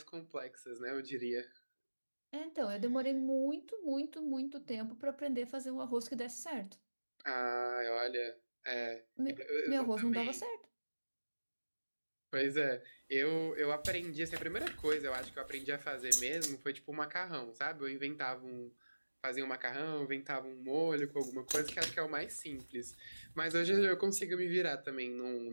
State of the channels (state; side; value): inverted; both; correlation -1.00